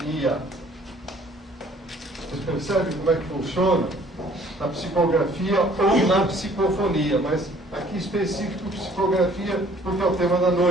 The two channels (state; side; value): normal; both; correlation 0.56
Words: Vocês percebem como é que funciona? Na psicografia ou na psicofonia, mas aqui específico psicografia, porque é o tema da